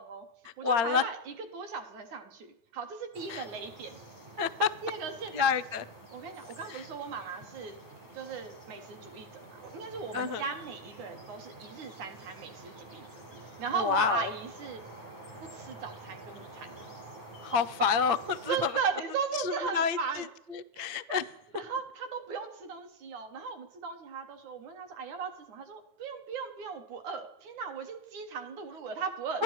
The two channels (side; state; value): left; late; 8.7 ms